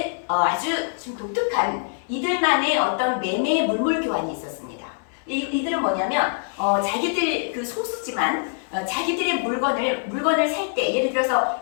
아주 좀 독특한 이들만의 어떤 매매 물물 교환이 있었습니다. 이들은 뭐냐면 자기들 소수지만 자기들의 물건을 살 때 예를 들어서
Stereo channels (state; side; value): silent; right; 63 dB below the other